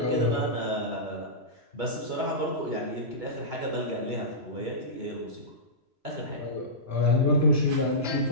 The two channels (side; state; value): left; late; 3.0 ms